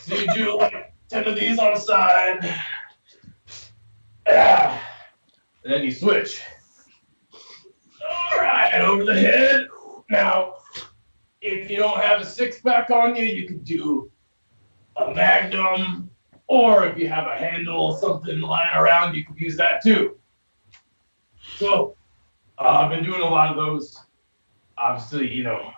you do like 10 of these on the side. Yeah. And then you switch. All right, over the head. Now, if you don't have a 6-pack on you, you can do a magnum. Or if you have a handle, something lying around, you can use that too. So, I've been doing a lot of those. Obviously,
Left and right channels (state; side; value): inverted; both; correlation -1.00